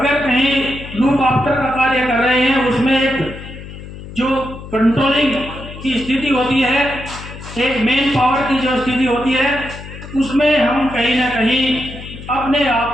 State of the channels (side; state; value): left; noise; hum, 13 dB below the sound